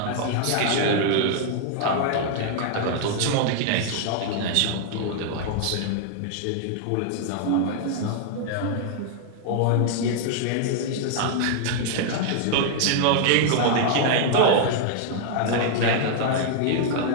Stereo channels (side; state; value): both; different; correlation 0.00